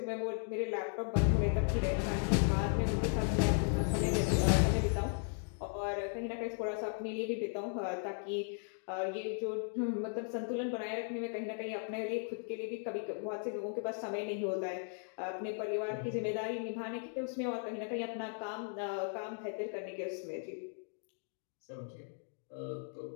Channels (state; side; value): silent; right; 53 dB below the other